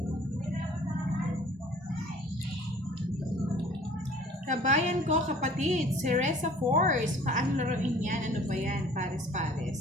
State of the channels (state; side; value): normal; both; correlation 0.50